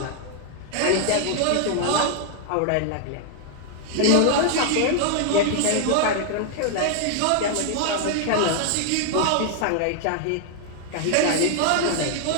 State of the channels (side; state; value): both; different; correlation 0.00